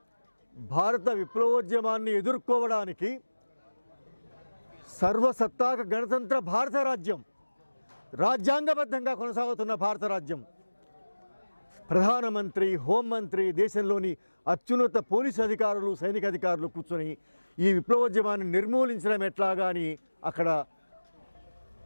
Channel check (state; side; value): inverted; both; correlation -1.00